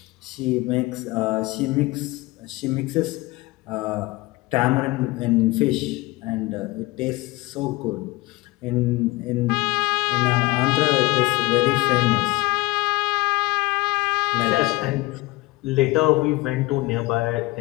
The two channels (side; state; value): right; quieter; 21.1 dB